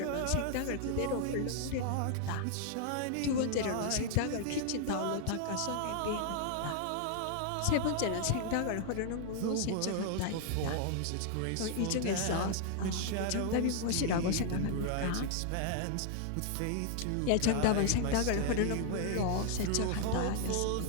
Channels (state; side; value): different; both; correlation 0.00